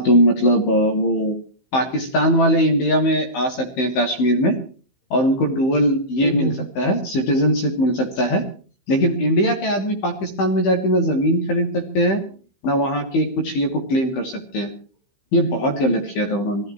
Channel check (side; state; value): right; late; 15 ms